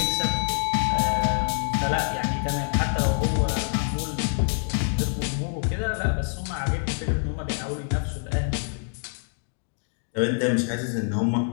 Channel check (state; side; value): silent; right; 60 dB below the other